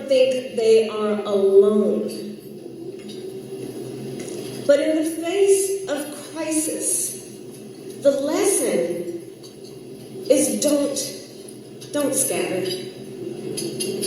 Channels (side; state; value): both; identical; correlation 1.00